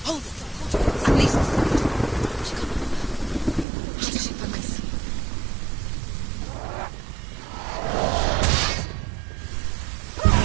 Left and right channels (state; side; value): drops out; left; at 3.7 s